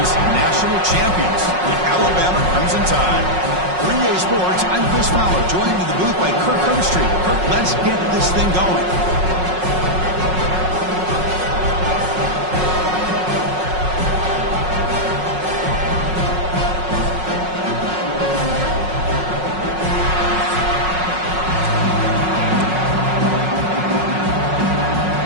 national champions, the Alabama Crimson Tide. 3A Sports, I'm Chris Fowler, joined in the booth by Kirk Herbstreit. Kirk, let's get this thing going.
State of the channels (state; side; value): late; left; 5.5 ms